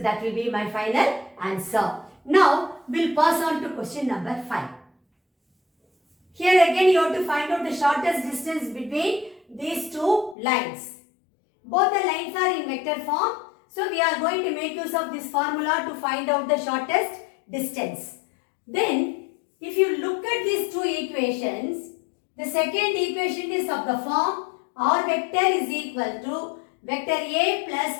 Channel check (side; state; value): right; drops out; at 10.4 s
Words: will be my final answer. Now, we'll pass on to question number 5. Here again, you have to find out the shortest distance between these two lines. Both the lines are in vector form. So, we are going to make use of this formula to find out the shortest distance. Then, if you look at these two equations, the second equation is of the form R vector is equal to vector A plus